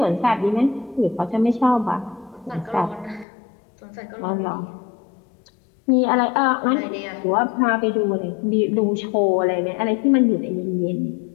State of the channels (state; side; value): drops out; right; at 3.2 s